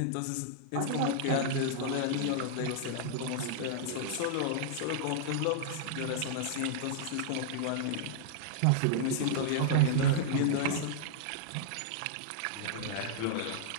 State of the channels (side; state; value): both; different; correlation -0.01